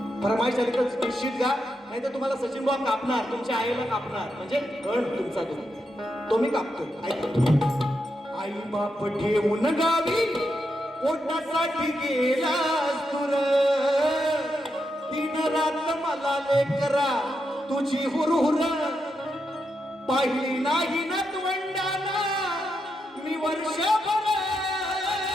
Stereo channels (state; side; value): normal; both; correlation 0.84